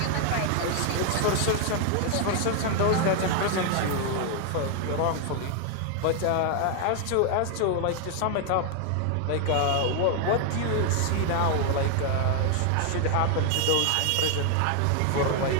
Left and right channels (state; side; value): different; both; correlation 0.00